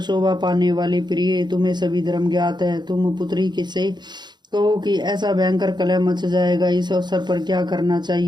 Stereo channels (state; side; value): late; left; 0.21 ms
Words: शोभा पाने वाली प्रिय, तुम्हें सभी धर्म ज्ञात है। तुम पुत्री से कहो कि ऐसा भयंकर कलह मच जाएगा। इस अवसर पर क्या करना